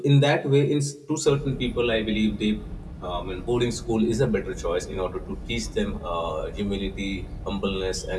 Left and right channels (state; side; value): identical; both; correlation 1.00